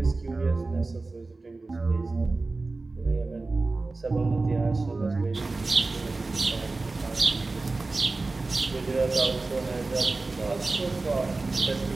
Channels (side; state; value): left; quieter; 3.5 dB